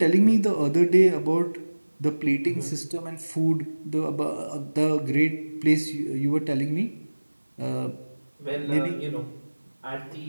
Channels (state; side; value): inverted; both; correlation -1.00